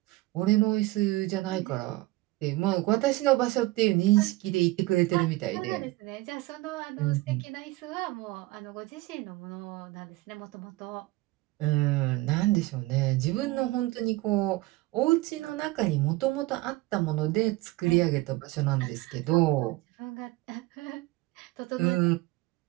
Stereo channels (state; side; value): quieter; left; 19.5 dB